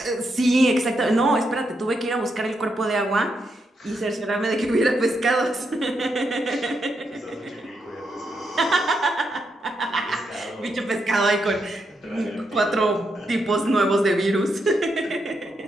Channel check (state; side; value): normal; both; correlation 0.81